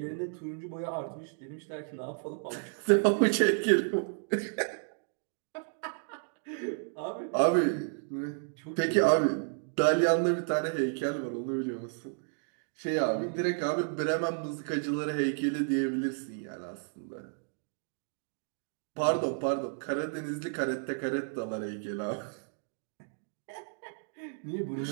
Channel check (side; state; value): left; silent; digital silence